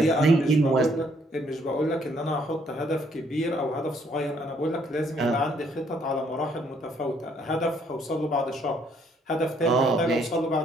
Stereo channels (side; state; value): both; normal; correlation 0.67